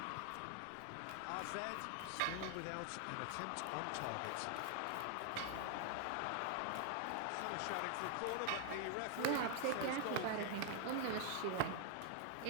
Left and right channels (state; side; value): different; both; correlation 0.00